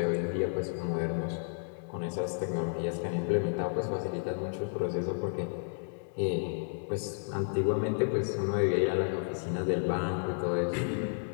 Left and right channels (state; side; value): silent; right; digital silence